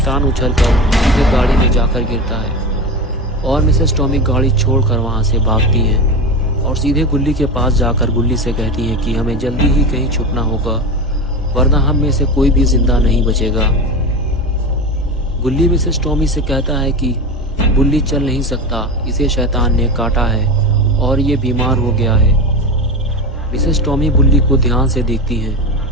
उछलकर सीधे गाड़ी में जाकर गिरता है और मिसेस टॉमी गाड़ी छोड़कर वहां से भागती है और सीधे गुल्ली के पास जाकर गुल्ली से कहती है कि हमें जल्दी ही कहीं छुपना होगा, वरना हम में से कोई भी जिंदा नहीं बचेगा। गुल्ली मिसेस टॉमी से कहता है कि बुल्ली चल नहीं सकता, इसे शैतान ने काटा है और ये बीमार हो गया है। मिसेस टॉमी बुल्ली को ध्यान से देखती हैं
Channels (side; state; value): both; normal; correlation 0.24